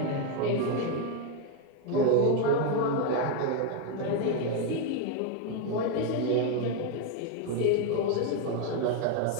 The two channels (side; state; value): both; different; correlation 0.02